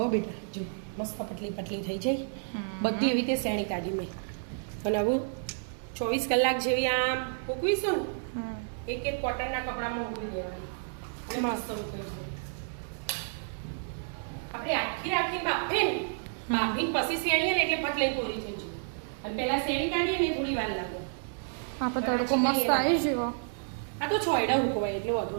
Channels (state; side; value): silent; left; digital silence